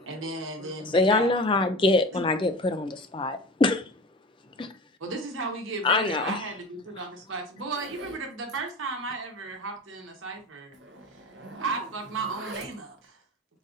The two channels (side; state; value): both; normal; correlation 0.33